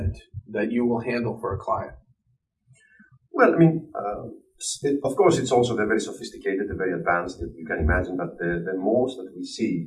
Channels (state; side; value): identical; both; correlation 1.00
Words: that you will handle for a client. Well, I mean, of course, it's also very sophisticated, very advanced. You can imagine that the most that we